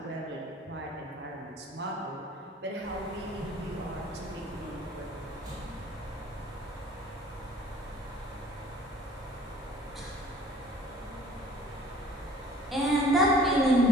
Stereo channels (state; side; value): normal; both; correlation 0.51